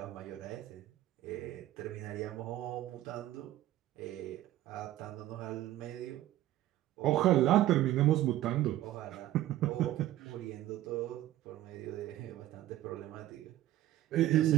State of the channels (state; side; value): quieter; left; 14.2 dB